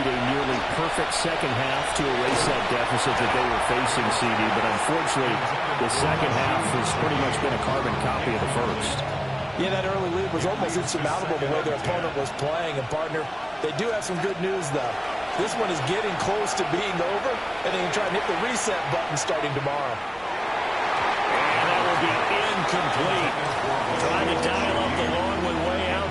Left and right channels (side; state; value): both; identical; correlation 1.00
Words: a nearly perfect second half to erase that deficit that they were facing, CD. But unfortunately, the second half has pretty much been a carbon copy of the first. Yeah, that early lead was almost insurmountable the way their opponent was playing. And, partner, they do have some good news, though. This one is getting close to being over, and they can try and hit the reset button starting tomorrow. And that will be incomplete. Trying to dial up the long way out